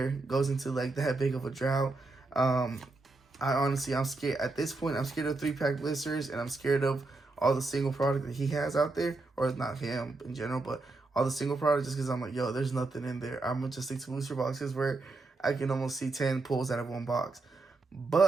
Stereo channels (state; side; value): quieter; left; 3.4 dB